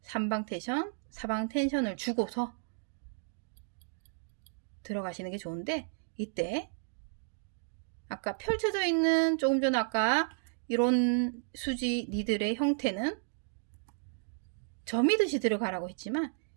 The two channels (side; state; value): left; silent; digital silence